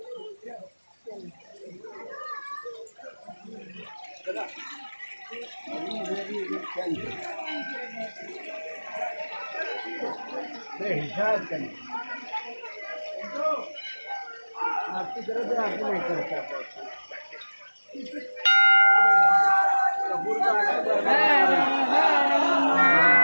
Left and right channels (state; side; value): inverted; both; correlation -1.00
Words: आपकी जरूरत आपको नहीं करता